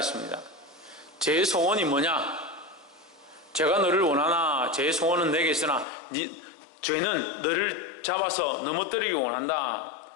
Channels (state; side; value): drops out; right; at 5.9 s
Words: 죄의 소원이 뭐냐? 죄가 너를 원하나 죄의 소원은 내게 있으나 죄는 너를 잡아서 넘어뜨리기 원한다.